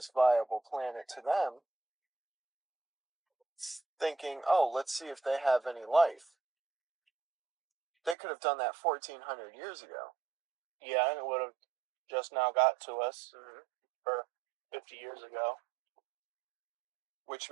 viable planet to them, thinking, oh, let's see if they have any life. They could have done that 1,400 years ago. Yeah, and it would have just now got to us, or 50 years ago. Which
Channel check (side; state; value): left; drops out; at 8.2 s